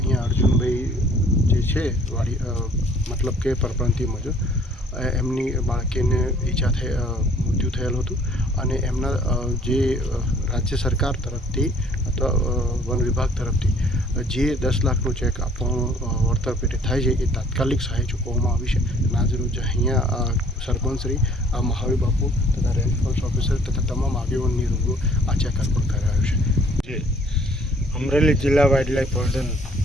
અર્જુનભાઈ જે છે વાડી મતલબ કે પરપ્રાંતીય મજૂર, એમની બાળકીને મૃત્યુ થયેલું હતું અને એમના જે રાજ્ય સરકાર તરફથી અથવા વન વિભાગ તરફથી જે 10 લાખનો ચેક આપવાનું વળતર પેટે થાય છે, એ તાત્કાલિક સહાય ચૂકવવામાં આવી છે. આજરોજ અહીંયા સરપંચશ્રી મહાવીર બાપુ તથા રેન્જ ફોરેસ્ટ ઓફિસર તથા તમામ આગેવાનની રૂબરૂ આ ચેક અર્પણ કરાયો છે. અમરેલી જિલ્લા વાઇલ્ડ લાઇફ વોર્ડન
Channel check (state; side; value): normal; both; correlation 0.57